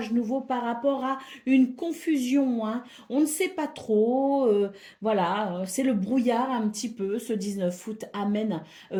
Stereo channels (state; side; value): identical; both; correlation 1.00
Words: nouveau par rapport à une confusion. Hein. On ne sait pas trop, voilà, c'est le brouillard un petit peu. Ce 19 août amène